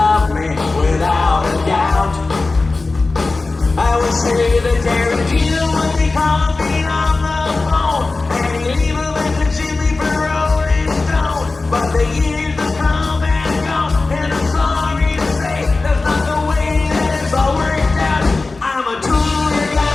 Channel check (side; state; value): right; quieter; 3.6 dB